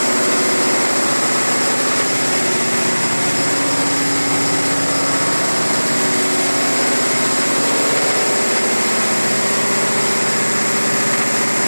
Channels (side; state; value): both; inverted; correlation -1.00